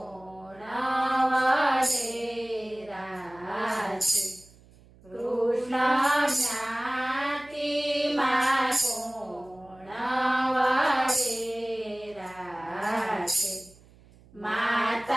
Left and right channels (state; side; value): noise; right; hum, 26 dB below the sound